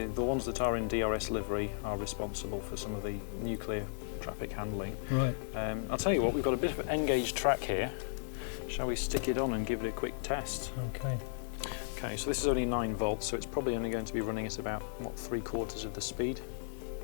ones that are in DRS livery are responsible for some of the nuclear traffic handling. Right. I'll tell you what, we've got a bit of an N gauge track here. Shall we stick it on and give it a quick test? Okay. Okay, so this is only 9 volts, so it's probably only going to be running at about, what, 3/4 of the speed.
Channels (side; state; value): right; silent; 54 dB below the other